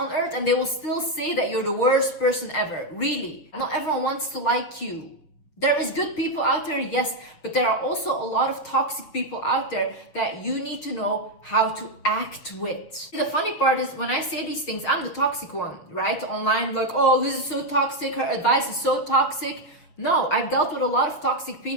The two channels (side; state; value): right; late; 6.8 ms